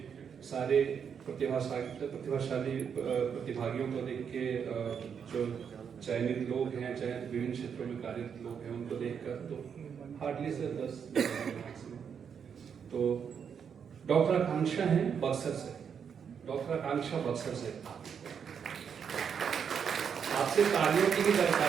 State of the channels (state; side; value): quieter; left; 7.2 dB